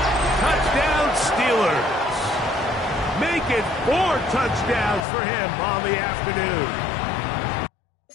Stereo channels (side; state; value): right; drops out; at 5.1 s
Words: Touchdown Steelers. Make it 4 touchdowns for him on the afternoon.